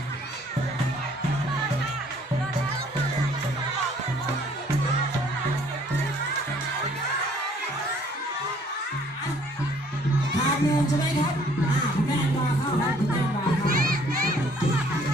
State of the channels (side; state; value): both; normal; correlation 0.60